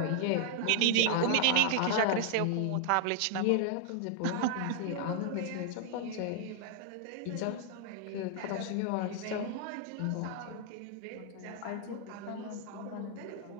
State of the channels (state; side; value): different; both; correlation 0.00